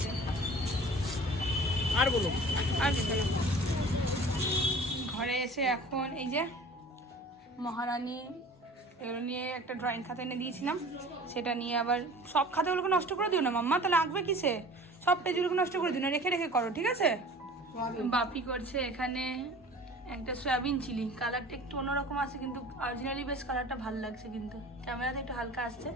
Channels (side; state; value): both; normal; correlation 0.43